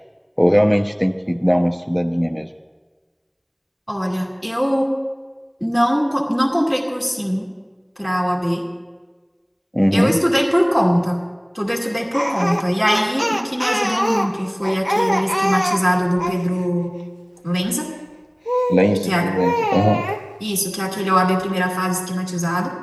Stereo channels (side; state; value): both; identical; correlation 1.00